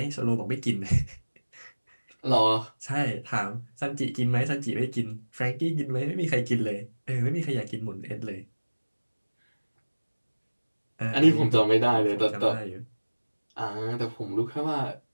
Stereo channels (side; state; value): both; inverted; correlation -1.00